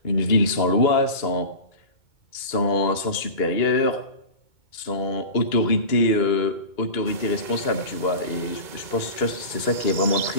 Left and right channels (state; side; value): late; right; 2.2 ms